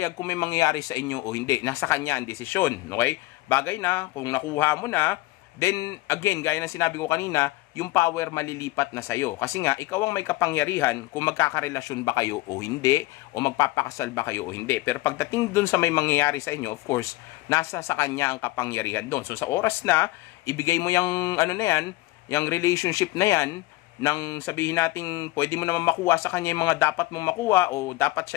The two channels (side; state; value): right; quieter; 19.7 dB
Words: kung may mangyayari sa inyo o hindi. Nasa kanya ang desisyon, okay? Bagay na, kung nakuha mo na, then, again, gaya ng sinabi ko kanina, yung power malilipat na sa'yo. Kasi nga, ikaw ang may kapangyarihan kung magkakarelasyon ba kayo o hindi, o magpapakasal ba kayo o hindi. Pero pagdating dun sa may mangyayari sa inyo, of course, nasa sa kanya ang kapangyarihan dun. So, sa oras na, ibigay mo yung, yung relationship na yan, nang sabihin natin pwede mo naman makuha sa kanya yung mga dapat mong makuha o dapat